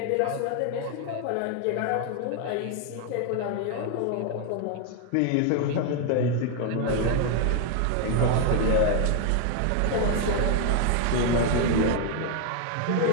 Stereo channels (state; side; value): different; both; correlation 0.01